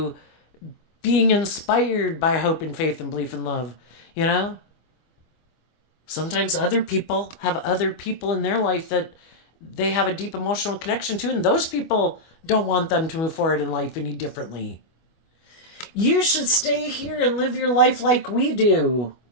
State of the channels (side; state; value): right; late; 25 ms